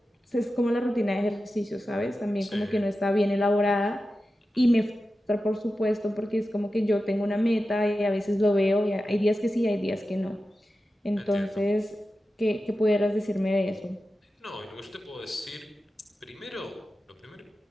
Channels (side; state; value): both; normal; correlation 0.93